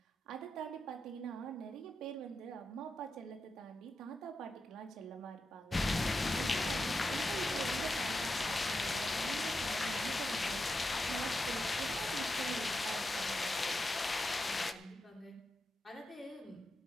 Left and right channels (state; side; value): normal; both; correlation 0.88